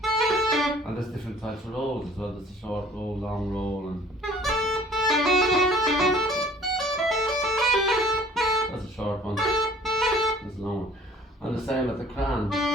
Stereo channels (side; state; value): both; normal; correlation 0.52